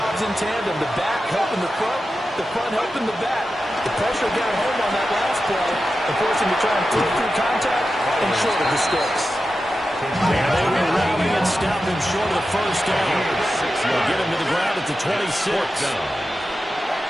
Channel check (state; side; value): normal; both; correlation 0.91